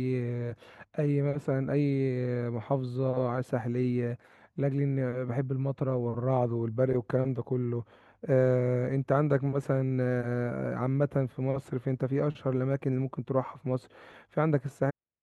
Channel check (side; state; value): both; identical; correlation 1.00